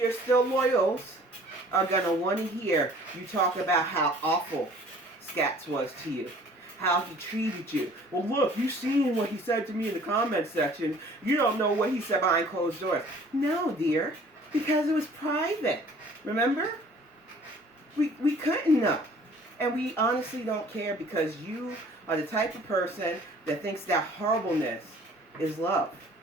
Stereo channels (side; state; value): both; normal; correlation 0.52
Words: still loyals, are going to want to hear you talk about how awful Scats was to you. How he treated you. Well, look, you seen what he said to me in the comments section. You don't know what he said behind closed doors. No, dear, because it was private. Remember? We couldn't know. And we honestly don't care because you are the type of person that thinks that horribleness is love.